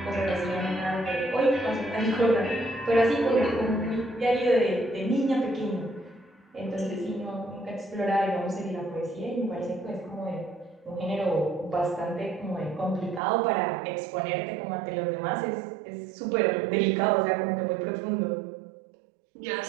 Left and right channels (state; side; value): drops out; left; at 13.2 s